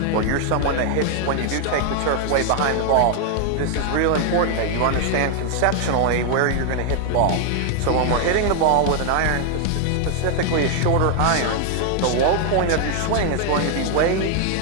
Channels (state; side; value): different; both; correlation 0.00